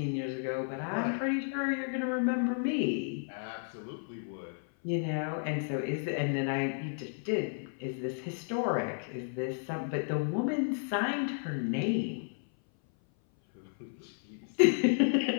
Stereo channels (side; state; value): right; silent; 56 dB below the other